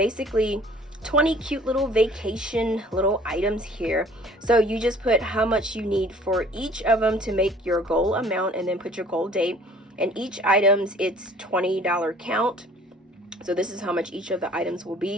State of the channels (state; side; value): normal; both; correlation 0.53